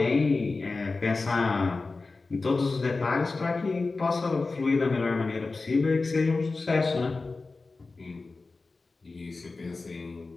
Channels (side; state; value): right; quieter; 3.7 dB